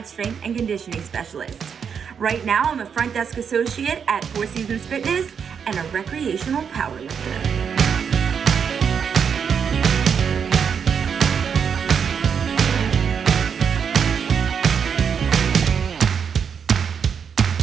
strength and conditioning specialist. Right now, I'm a front desk associate at Four Seasons Fitness and a recreational powerlifter.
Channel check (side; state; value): left; quieter; 7.0 dB